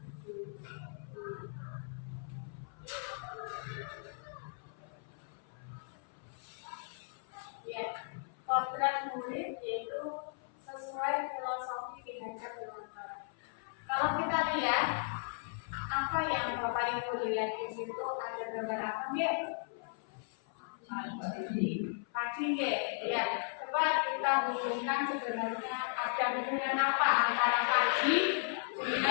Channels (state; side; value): silent; right; 54 dB below the other